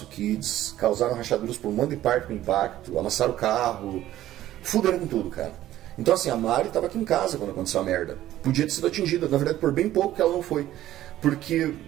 kids, causaram rachaduras por um monte de parte com impacto, amassaram o carro, fuderam com tudo, cara. Então assim, a Mari estava aqui em casa quando aconteceu a merda. Podia ter sido atingida, na verdade por bem pouco que ela não foi. Porque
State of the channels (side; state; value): left; quieter; 13.7 dB